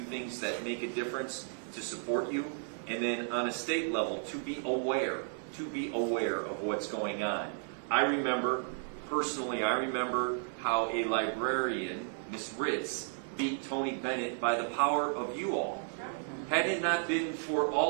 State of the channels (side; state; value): left; silent; 55 dB below the other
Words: things that make a difference to support you. And then on a state level, to be aware of what's going on. I remember how a librarian, Ms. Ritz, beat Tony Bennett by the power of you all. Had it not been for